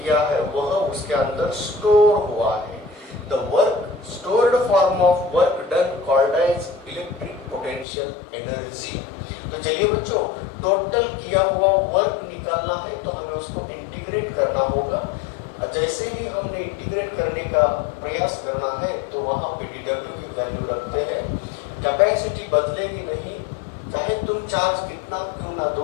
है वह उसके अंदर स्टोर हुआ है। The work stored form of work done called as electric potential energy. तो चलिए बच्चों, टोटल किया हुआ वर्क निकालना है तो हमें उसको इंटीग्रेट करना होगा। जैसे ही हमने इंटीग्रेट करने का प्रयास करना है तो वहां पे dw की वैल्यू रखते हैं। कैपेसिटी बदलेगी नहीं, चाहे तुम चार्ज कितना क्यों ना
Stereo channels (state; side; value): drops out; right; at 7.9 s